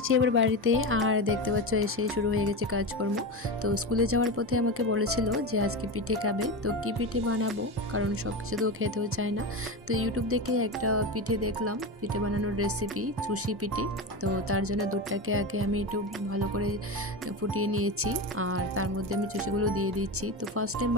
এবার বাড়িতে, আর দেখতে পাচ্ছ এসে শুরু হয়ে গেছে কাজকর্ম। তো স্কুলে যাওয়ার পথে আমাকে বলেছিল যে আজকে পিঠে খাবে, তো কি পিঠে বানাবো, কারণ সব কিছু তো খেতেও চায় না। তো ইউটিউব দেখে একটা পিঠে দেখলাম, পিঠে বানানোর রেসিপি, চুষি পিঠে। তো তার জন্য দুধটাকে আগে আমি একটু ভালো করে ফুটিয়ে নিয়েছি, আর তার মধ্যে আমি চুষিগুলো দিয়ে দিচ্ছি। তো ফার্স্ট টাইম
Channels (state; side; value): normal; both; correlation 0.21